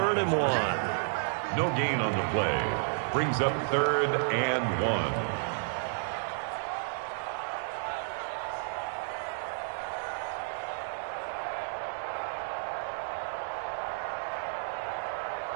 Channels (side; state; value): left; silent; digital silence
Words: and 1. No gain on the play. Brings up 3rd and 1.